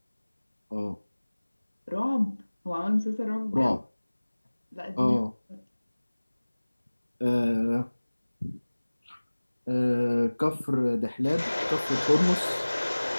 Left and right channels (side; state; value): both; inverted; correlation -1.00